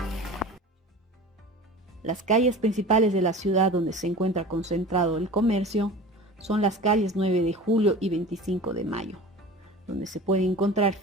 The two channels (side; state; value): both; normal; correlation 0.37